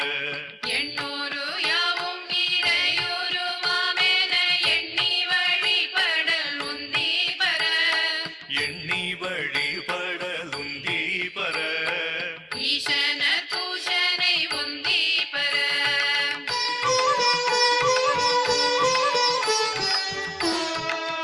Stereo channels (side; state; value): both; identical; correlation 1.00